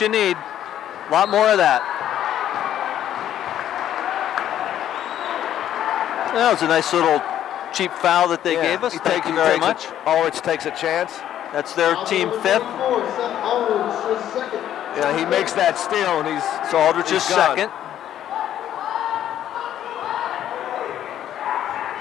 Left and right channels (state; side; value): quieter; right; 11.2 dB